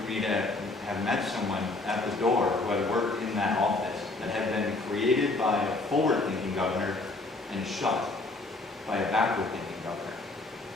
me to have met someone at the door who had worked in that office that have been created by a forward-thinking governor and shut by a backward-thinking governor.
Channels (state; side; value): quieter; right; 3.1 dB